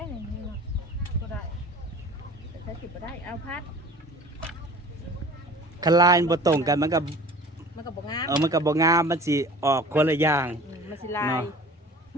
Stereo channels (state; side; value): normal; both; correlation 0.44